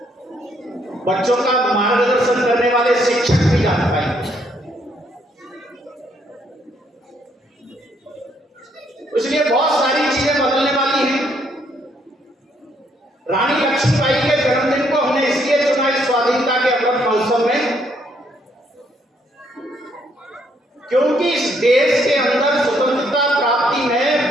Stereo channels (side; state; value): both; normal; correlation 0.70